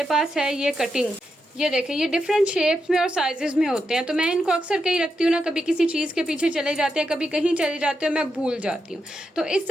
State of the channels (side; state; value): both; normal; correlation 0.85